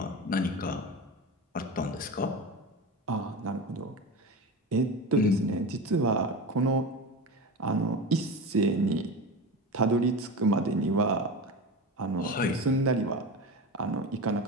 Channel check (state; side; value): normal; both; correlation 0.26